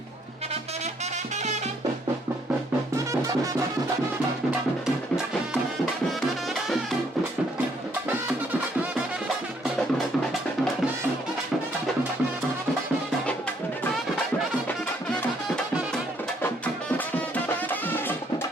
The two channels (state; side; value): normal; both; correlation 0.68